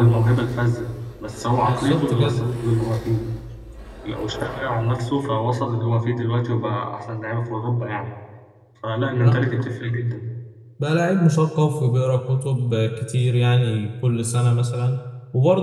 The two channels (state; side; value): identical; both; correlation 1.00